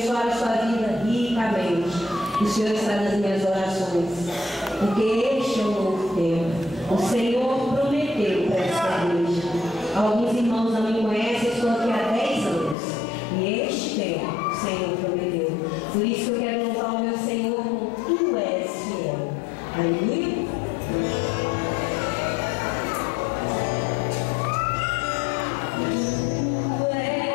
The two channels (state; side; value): drops out; right; at 12.8 s